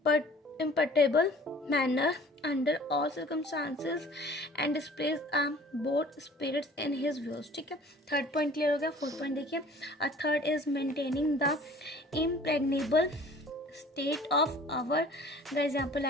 imperturbable manner under all circumstances and displays a bold spirits in his views. ठीक है, third point clear हो गया। Fourth point देखिए, a third is maintaining the impregnable state of our, guys यहाँ पर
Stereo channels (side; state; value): both; normal; correlation 0.49